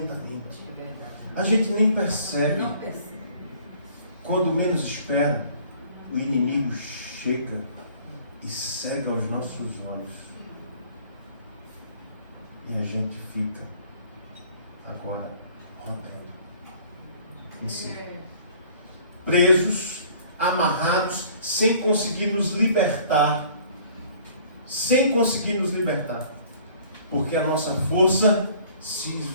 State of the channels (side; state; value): both; inverted; correlation -0.54